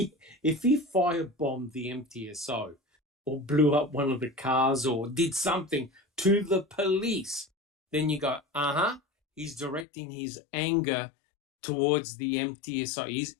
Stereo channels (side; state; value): right; drops out; at 9.9 s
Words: firebombed the MTSO or blew up one of the cars or did something to the police, then you go, he's directing his anger towards the MTSO.